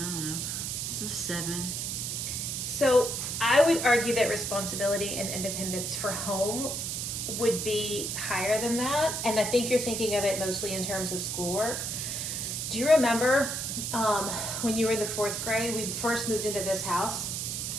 don't know. Just a 7. So I would argue that responsibility and independence for home would be higher than that. And I think you're thinking of it mostly in terms of schoolwork. Do you remember when you were in the 4th grade, we first moved into this house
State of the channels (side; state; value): right; noise; hiss, 3 dB below the sound